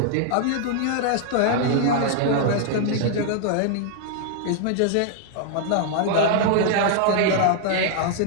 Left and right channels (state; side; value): different; both; correlation -0.01